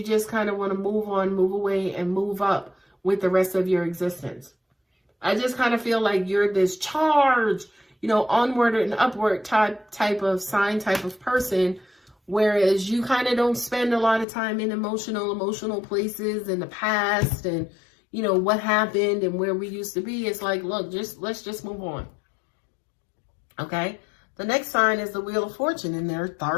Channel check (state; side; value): drops out; right; at 14.2 s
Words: just kind of want to move on, move away, and move up with the rest of your existence. I just kind of feel like you're this charge, you know, onward and upward type of sign, type of person, whereas you kind of don't spend a lot of time in emotional places in the past and, you know, what happened and where we used to be. It's like, look, let's just move on. Okay? The next sign is the Wheel of Fortune, and there